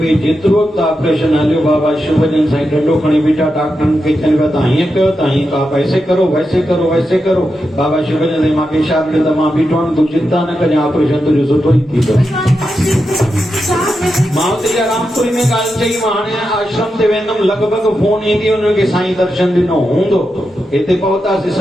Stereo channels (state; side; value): normal; both; correlation 0.88